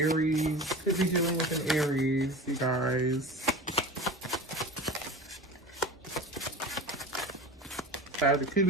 Could be dealing with an Aries, you guys. Could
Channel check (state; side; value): normal; both; correlation 0.33